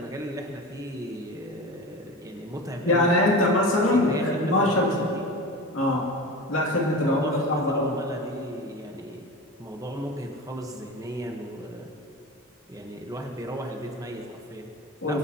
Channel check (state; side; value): normal; both; correlation 0.30